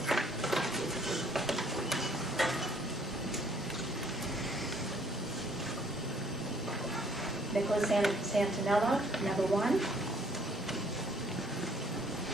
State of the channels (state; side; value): normal; both; correlation 0.62